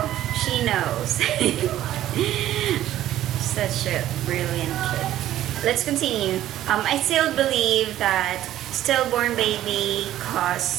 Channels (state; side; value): quieter; left; 13.1 dB